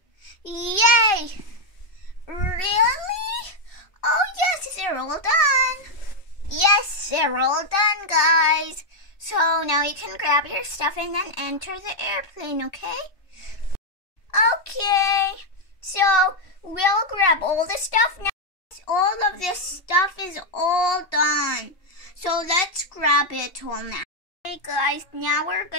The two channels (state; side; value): late; right; 2.7 ms